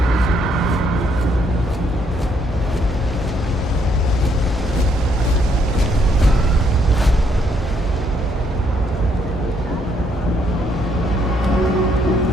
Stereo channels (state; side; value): normal; both; correlation 0.71